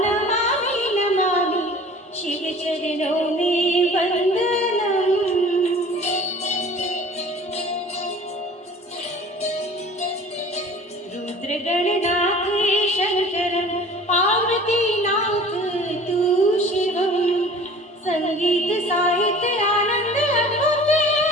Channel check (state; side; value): normal; both; correlation 0.45